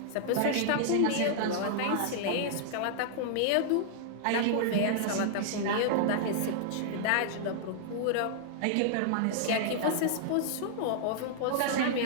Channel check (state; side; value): different; both; correlation -0.01